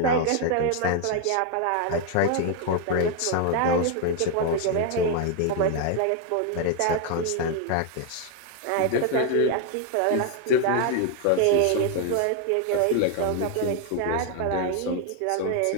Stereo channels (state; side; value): different; both; correlation 0.00